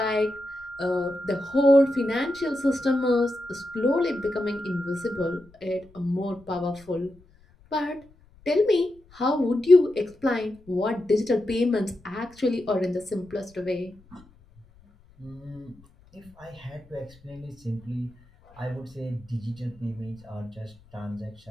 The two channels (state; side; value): noise; left; rumble, 27 dB below the sound